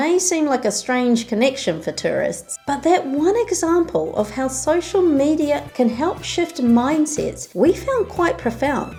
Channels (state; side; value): identical; both; correlation 1.00